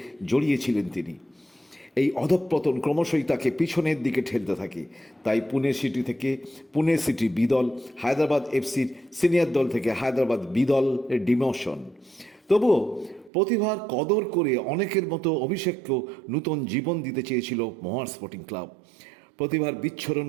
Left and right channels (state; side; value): drops out; left; at 13.3 s